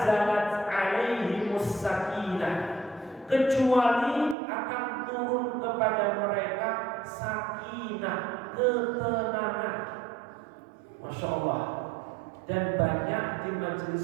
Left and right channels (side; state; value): left; drops out; at 4.4 s